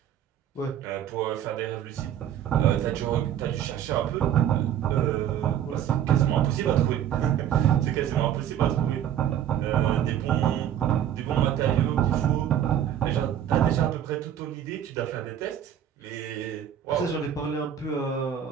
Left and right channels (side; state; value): left; quieter; 10.2 dB